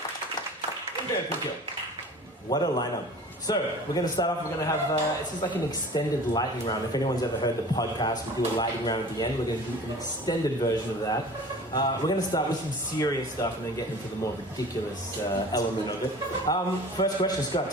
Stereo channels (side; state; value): both; normal; correlation 0.42